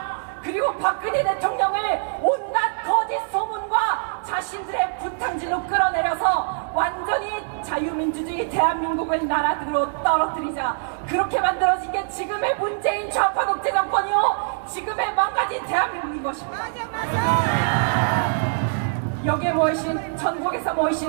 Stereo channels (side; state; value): left; silent; digital silence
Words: 그리고 박근혜 대통령을 온갖 거짓 소문과 자신들의 부탕질로 끌어내려서 완전히 자유민주주의 대한민국을 나라로 떨어뜨리자. 그렇게 만들어진 게 지금의 문재인 좌파 독재 정권이요, 지금의 망가진 대한민국인 것입니다. 여기에 모이신, 전국에서